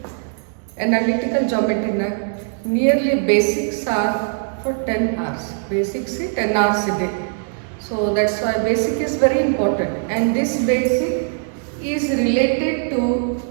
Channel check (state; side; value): silent; left; digital silence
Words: Analytical geometry na nearly basics are for 10 hours. Basics is 10 hours a day. So that's why basic is very important, and this basic is related to